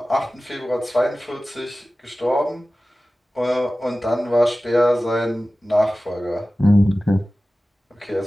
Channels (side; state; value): both; normal; correlation 0.96